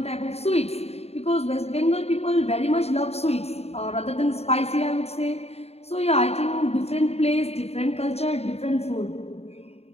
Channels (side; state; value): right; late; 0.30 ms